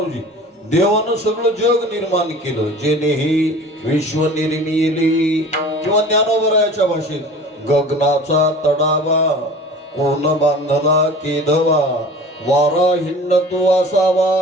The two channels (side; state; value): both; normal; correlation 0.41